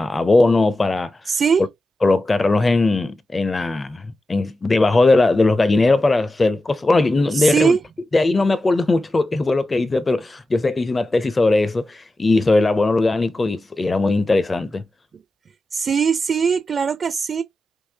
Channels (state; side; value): normal; both; correlation 0.92